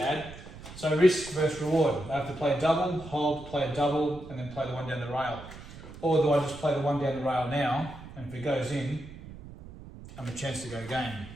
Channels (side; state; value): right; noise; rumble, 15 dB below the sound